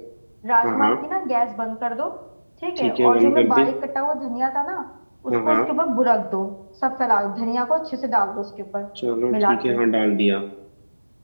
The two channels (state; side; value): inverted; both; correlation -1.00